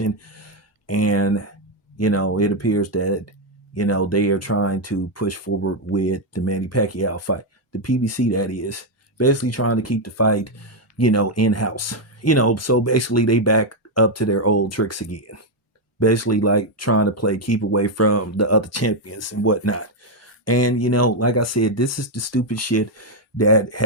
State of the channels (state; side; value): normal; both; correlation 0.02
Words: and it appears that they are trying to push forward with the Manny Pacquiao fight, the PBC, that is basically trying to keep the fight in house. So basically they back up to their old tricks again, basically like trying to play keep away from the other champions and whatnot. And like I said, this is the stupid shit that